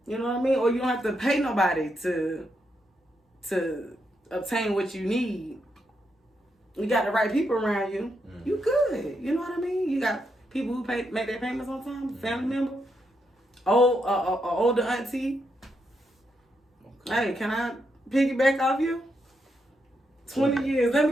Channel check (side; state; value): both; normal; correlation 0.81